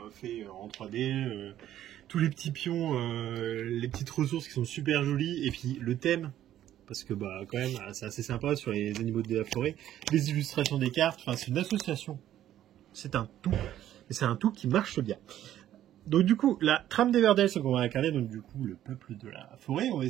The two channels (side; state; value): left; quieter; 12.1 dB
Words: fait en 3D, tous les petits pions, les petites ressources qui sont super jolies, et puis le thème, parce que quand même c'est assez sympa sur les animaux de la forêt, les illustrations des cartes, enfin c'est une association, c'est un tout, et c'est un tout qui marche bien. Donc du coup, la trame d'Everdell, c'est qu'on va incarner donc du coup le peuple de la forêt. On va